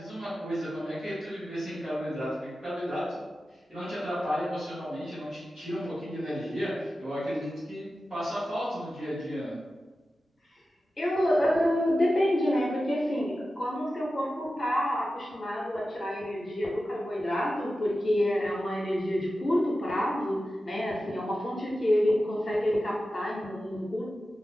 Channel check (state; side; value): normal; both; correlation 0.93